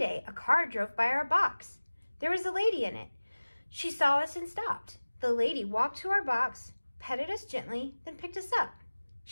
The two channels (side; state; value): both; inverted; correlation -1.00